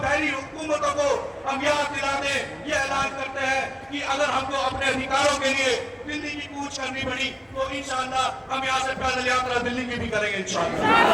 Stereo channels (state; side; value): identical; both; correlation 1.00